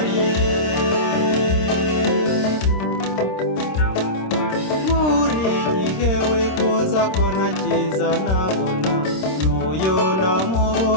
Buri gihe wifuza ko nakiza nabona, n'uyo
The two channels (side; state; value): right; late; 26 ms